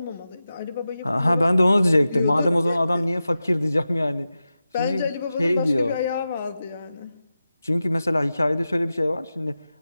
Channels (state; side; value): inverted; both; correlation -0.93